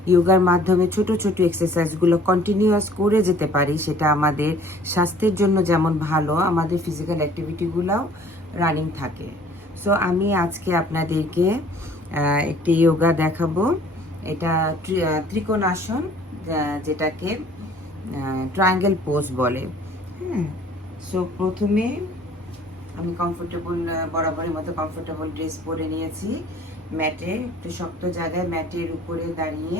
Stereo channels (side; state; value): both; normal; correlation 0.54